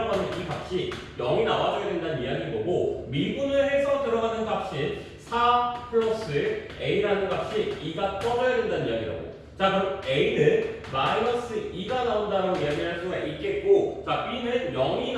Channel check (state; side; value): identical; both; correlation 1.00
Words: 하는 이 값이 0이 나와줘야 된다는 이야기인 거고 미분을 해서 들어가는 값이 4 플러스 a라는 값이 2가 떠져야 된다는 이야기라고. 자, 그럼 a는 마이너스 2가 나온다라고 이야기할 수가 있겠고 자, b는 0이